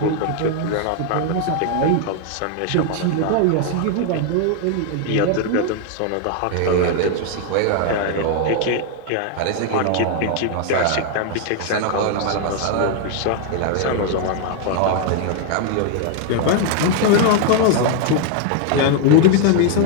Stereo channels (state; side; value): different; both; correlation 0.00